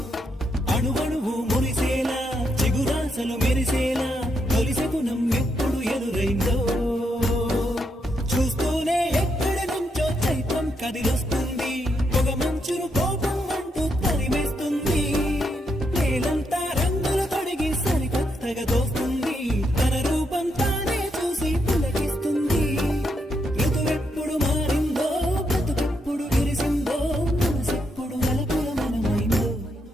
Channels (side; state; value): both; normal; correlation 0.79